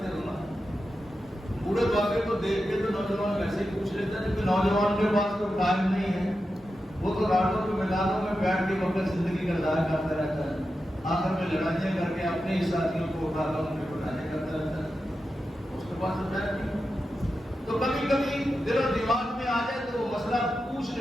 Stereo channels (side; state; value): both; normal; correlation 0.90